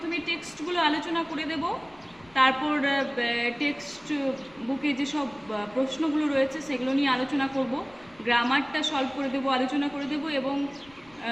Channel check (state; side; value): noise; left; rumble, 27 dB below the sound